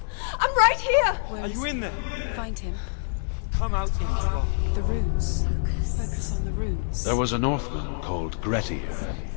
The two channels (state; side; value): silent; right; digital silence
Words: I'm right here! Are you in there? Find him. Come out if find you him. are. The runes. Focus. On the runes. There was a Northman called Grettir,